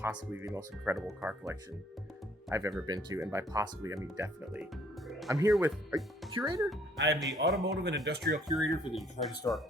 the most incredible car collection I've ever been to, and by possibly, I mean definitely. I'm here with a curator? I am the automotive and industrial curator for the Detroit Historical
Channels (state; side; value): normal; both; correlation 0.62